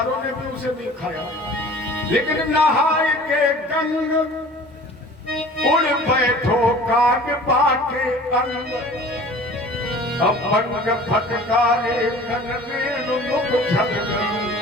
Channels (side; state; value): both; normal; correlation 0.45